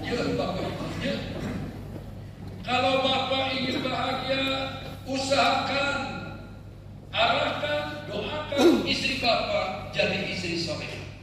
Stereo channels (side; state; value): both; identical; correlation 1.00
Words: bapak ibunya, kalau bapak ingin bahagia, usahakan, arahkan, doakan istri bapak jadi istri soleh.